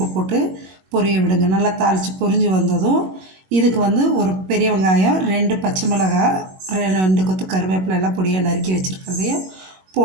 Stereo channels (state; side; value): late; left; 21 ms